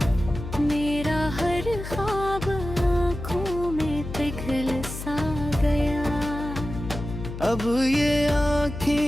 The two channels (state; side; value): noise; left; hum, 9 dB below the sound